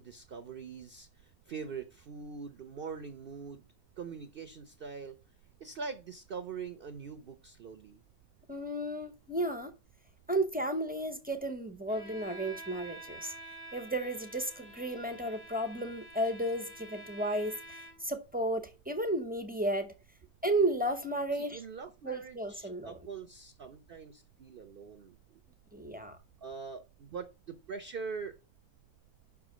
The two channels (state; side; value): noise; right; rumble, 29 dB below the sound